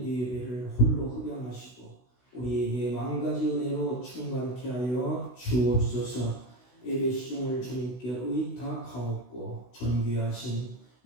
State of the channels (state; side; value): late; right; 16 ms